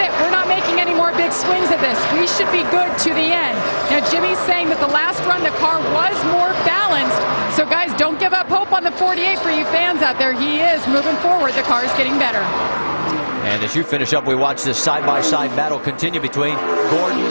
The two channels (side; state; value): both; inverted; correlation -1.00